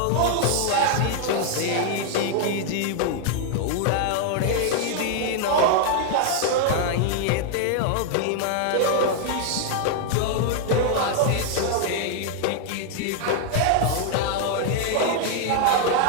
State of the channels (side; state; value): both; different; correlation 0.00